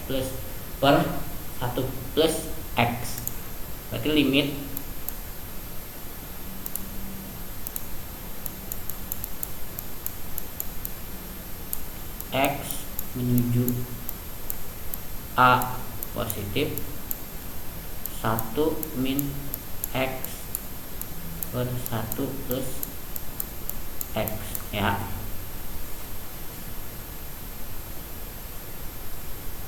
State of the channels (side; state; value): both; identical; correlation 1.00